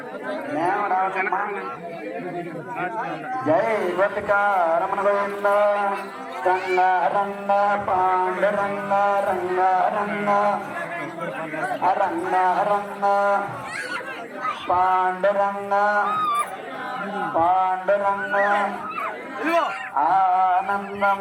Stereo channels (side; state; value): both; identical; correlation 1.00